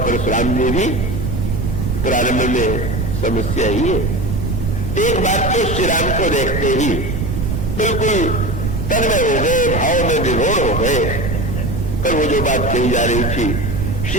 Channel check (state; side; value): noise; right; rumble, 2 dB below the sound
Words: ने भी। प्रारंभ में समस्या ही है। एक बात तो श्री राम को देखते ही बिल्कुल तन्मय हो गए, भाव में विभोर हो गए। पर वो जो बात कही जा रही थी,